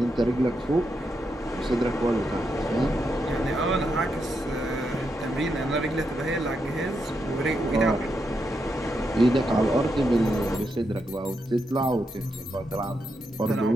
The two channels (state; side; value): normal; both; correlation 0.83